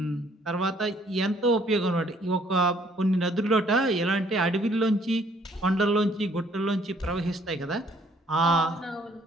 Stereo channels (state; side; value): normal; both; correlation 0.63